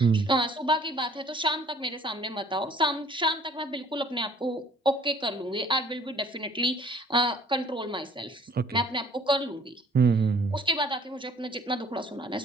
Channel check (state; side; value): normal; both; correlation 0.56